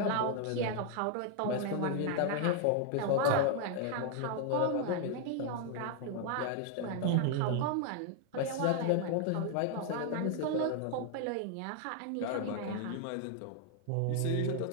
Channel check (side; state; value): both; different; correlation 0.00